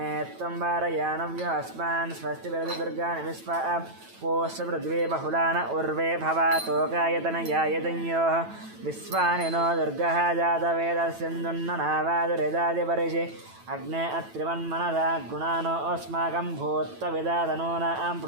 త్వం వారయానవ్యో అస్మాన్ స్వస్తి విరసి దుర్గాని విశ్వా పోష్య పృథ్వీ బహుళాన ఉర్వే భవాతోకాయతనయాయతన్యోః విశ్వాని నో దుర్గः జాతవేదస్యందున్ననావాదురిదాదిపరిషి అగ్నే అత్రివన్మనసా గుణానో అస్మాకం భూత్వవిదాతనూనాం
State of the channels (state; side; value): late; left; 9.1 ms